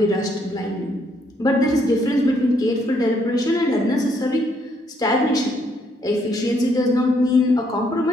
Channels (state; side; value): normal; both; correlation 0.71